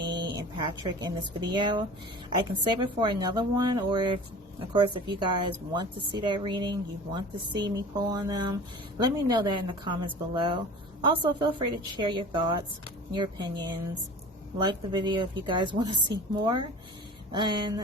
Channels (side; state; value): both; normal; correlation 0.39